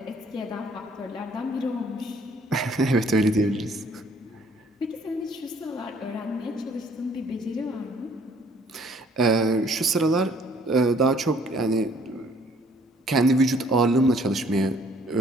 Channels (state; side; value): normal; both; correlation 0.60